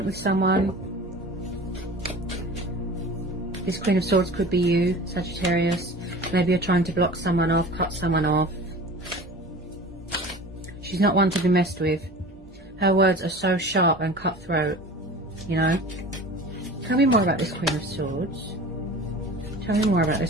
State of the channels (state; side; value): normal; both; correlation 0.39